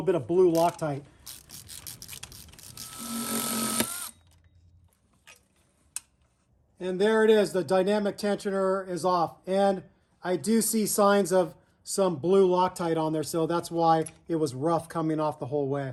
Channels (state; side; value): identical; both; correlation 1.00